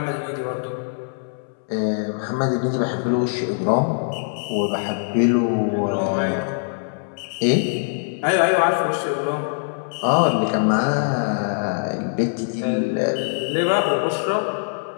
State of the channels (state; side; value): silent; right; 64 dB below the other